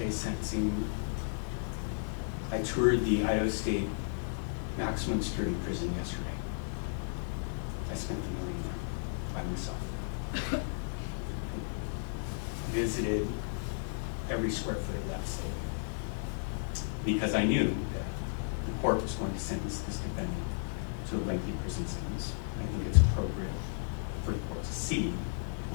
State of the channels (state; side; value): silent; right; digital silence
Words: sentencing, I toured the Idaho State maximum security prison yesterday. I spent the morning there by myself. Visited every square foot of that cell because I knew that the court was going to sentence this defendant to a lengthy prison sentence. I think it's appropriate for the court to see